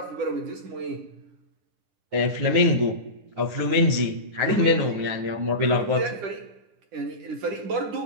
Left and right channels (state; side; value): late; left; 10 ms